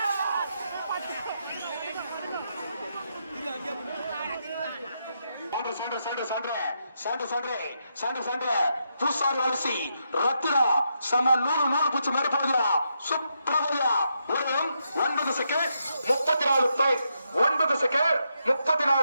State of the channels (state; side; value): inverted; both; correlation -0.81